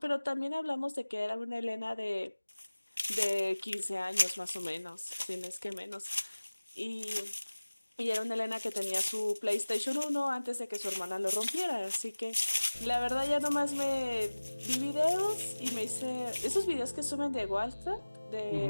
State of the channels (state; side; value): inverted; both; correlation -1.00